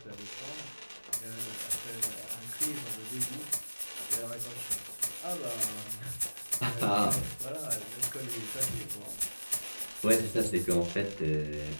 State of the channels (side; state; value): both; inverted; correlation -1.00